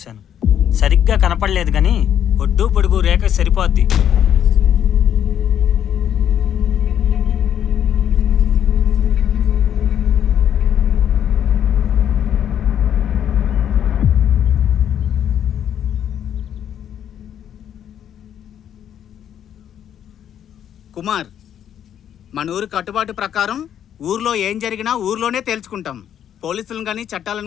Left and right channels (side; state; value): right; quieter; 9.7 dB